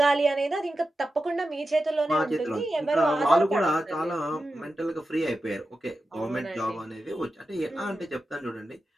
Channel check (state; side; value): normal; both; correlation 0.91